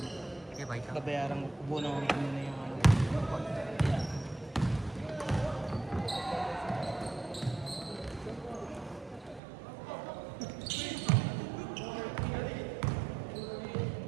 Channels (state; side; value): drops out; left; at 9.4 s